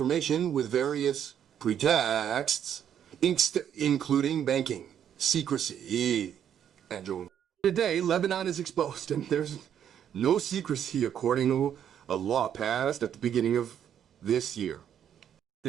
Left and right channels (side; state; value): left; quieter; 9.3 dB